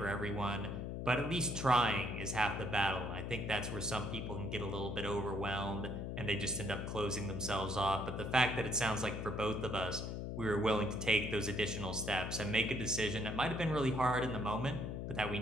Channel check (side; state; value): left; noise; hum, 4 dB below the sound